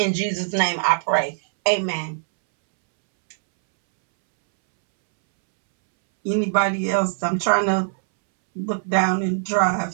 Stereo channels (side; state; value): left; silent; 64 dB below the other